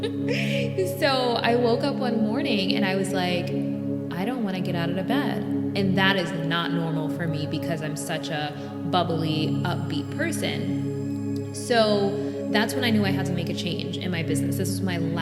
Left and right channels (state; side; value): identical; both; correlation 1.00